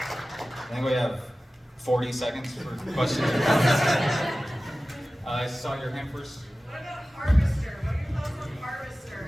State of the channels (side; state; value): both; normal; correlation 0.96